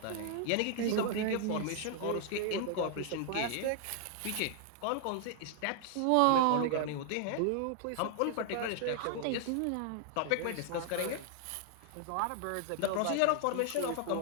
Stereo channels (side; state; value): both; different; correlation 0.00